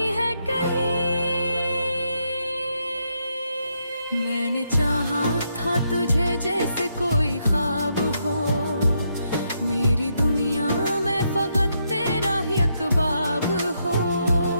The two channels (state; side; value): inverted; both; correlation -0.79